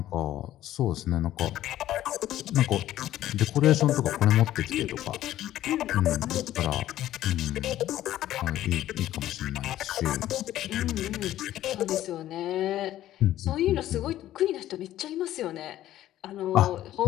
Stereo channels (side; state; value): right; quieter; 13.4 dB